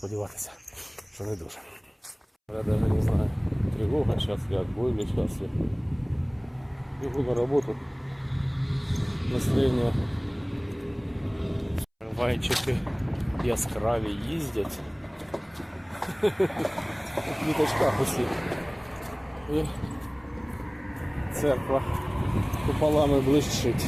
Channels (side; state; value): both; identical; correlation 1.00